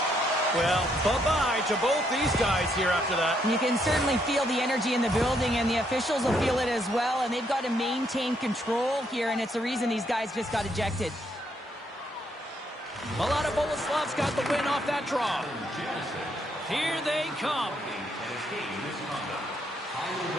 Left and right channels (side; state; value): both; normal; correlation 0.73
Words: Well, bye-bye to both these guys here after that. You can certainly feel the energy in the building, and the officials will feel it as well. And they've got to maintain control here, and it's the reason these guys just got ejected. Mladá Boleslav's got the win off that draw. Here they come.